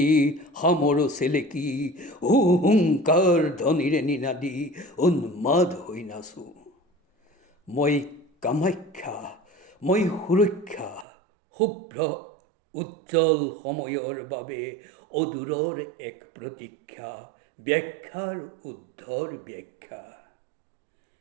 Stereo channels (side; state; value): left; drops out; at 11.1 s